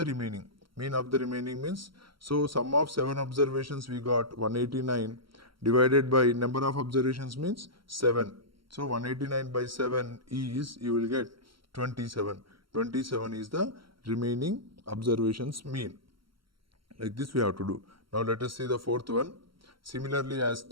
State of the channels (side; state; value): left; late; 0.74 ms